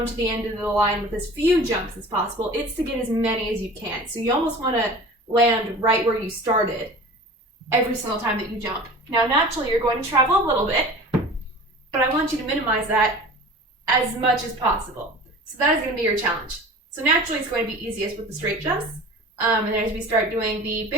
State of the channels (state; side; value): normal; both; correlation 0.39